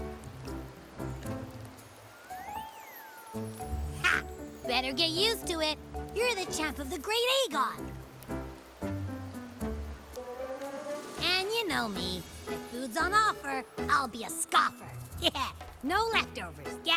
Ha! Better get used to it. You're the champ of the Great Aegon. And you know me. If food's on offer, I'll be a scoffer. Yeah, no leftovers,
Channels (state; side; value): identical; both; correlation 1.00